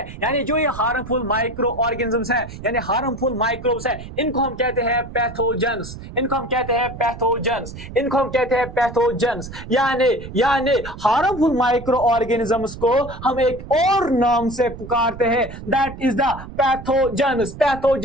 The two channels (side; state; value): right; noise; rumble, 12 dB below the sound